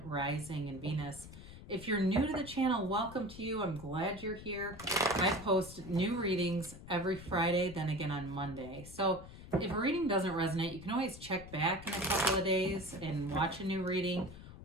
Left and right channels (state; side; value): noise; left; rumble, 15 dB below the sound